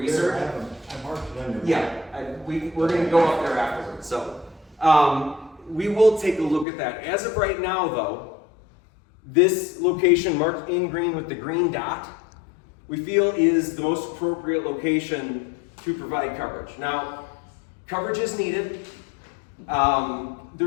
I marked it under. Yeah, we're going to go up there afterwards. So we will take a look at that. As of right now, though, this location marked in green with the green dot, we feel is the most appropriate location to provide coverage. Now, coverage is needed.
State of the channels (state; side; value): drops out; right; at 6.7 s